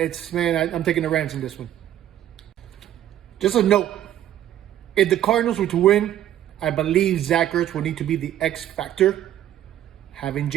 taking the Rams in this one. Just a note, if the Cardinals were to win, I believe Zach Ertz will need to be the X factor. Having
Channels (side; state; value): left; quieter; 11.8 dB